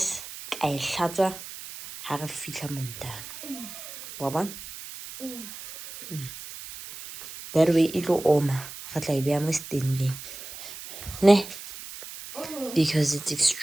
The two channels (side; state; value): right; noise; hiss, 12 dB below the sound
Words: I shatter, have a fitla montana. Waba? That way it'll oma. But like be almost standing. Ne? Because it's